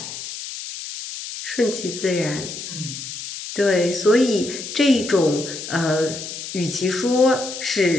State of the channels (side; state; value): left; noise; hiss, 9 dB below the sound